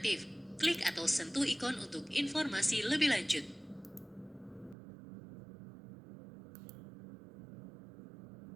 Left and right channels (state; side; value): drops out; left; at 4.8 s